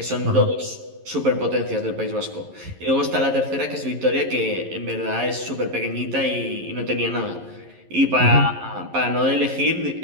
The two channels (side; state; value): left; late; 11 ms